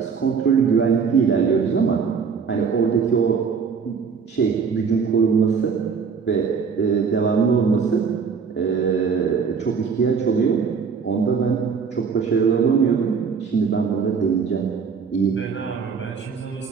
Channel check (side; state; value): left; quieter; 5.9 dB